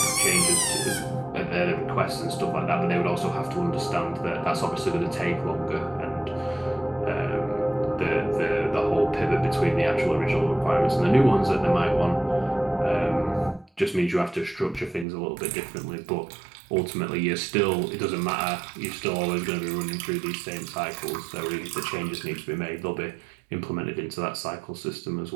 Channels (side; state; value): left; drops out; at 15.1 s